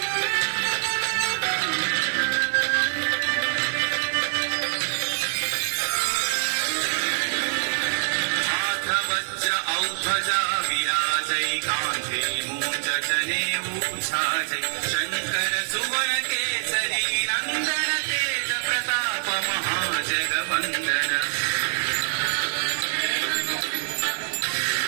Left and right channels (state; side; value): silent; left; 62 dB below the other